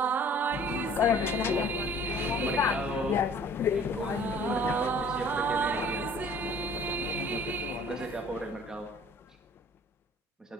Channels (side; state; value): both; normal; correlation 0.51